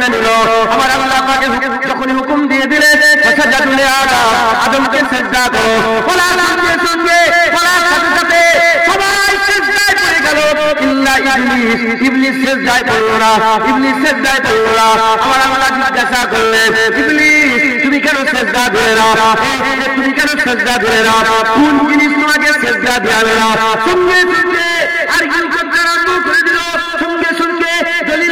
নিল। আমার আল্লাহ পাকের যখন হুকুম দিয়ে দিলেন সাজদা তুলে আদমকে সিজদা করো, বলার সঙ্গে সঙ্গে বলার সাথে সাথে সবাই সিজদায় পড়ে গেল, ইল্লা ইবলিস। ইবলিস সিজদায় পড়ল না, ইবলিস সিজদায় পড়ল না। আমার আল্লাহ জিজ্ঞাসা করলেন, ইবলিস তুমি কেন সিজদা দিলে না? তুমি কেন সিজদা দিলে না? কোন জিনিস তোমাকে সিজদা দেওয়াবে না? সঙ্গে সঙ্গে আরগুন করতে আরম্ভ করে দিল, সঙ্গে সঙ্গে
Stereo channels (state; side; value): identical; both; correlation 1.00